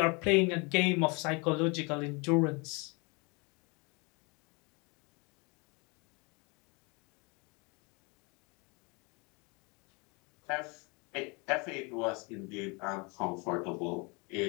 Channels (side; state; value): right; quieter; 30.1 dB